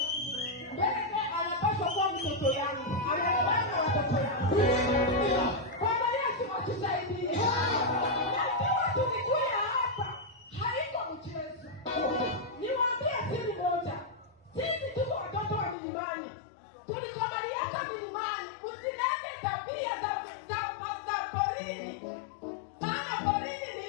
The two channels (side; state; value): right; drops out; at 15.8 s